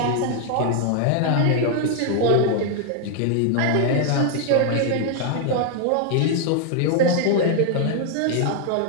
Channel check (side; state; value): both; different; correlation 0.00